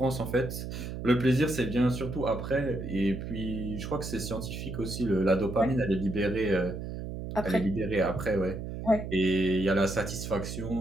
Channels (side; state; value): right; noise; hum, 7 dB below the sound